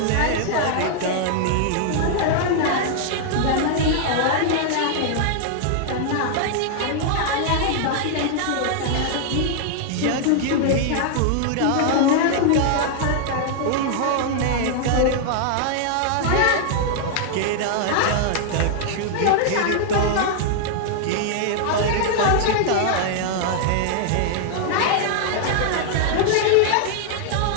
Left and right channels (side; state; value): both; different; correlation -0.01